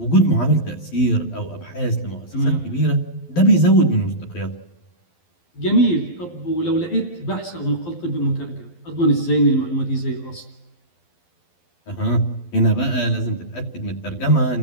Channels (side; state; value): right; late; 12 ms